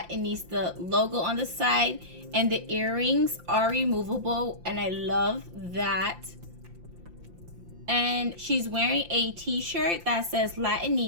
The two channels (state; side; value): late; left; 5.8 ms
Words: logo on the side, and the earrings are removable, and I love that. And she's wearing a t-shirt that says